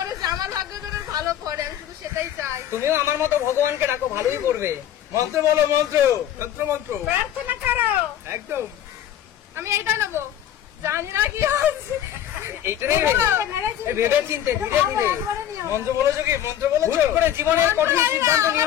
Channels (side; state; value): right; quieter; 10.9 dB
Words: আমার ভাগ্য যেন ভালো পড়ে, আমি শুধু সেটাই চাই। তুমিও আমার মতো ভগবানকে ডাকো, ভালোই করবে। মন্ত্র বলো, মন্ত্র। তন্ত্র মন্ত্র। প্রার্থনা করো। একদম। আমি এইটা নেবো, জানি না কি হচ্ছে। এইটা নেবে? ভেবে চিনতে ধীরে ধীরে। মন্ত্র বলেছো কি? মন্ত্র বলেছো? হুট করে জীবনের কঠিন সিদ্ধান্ত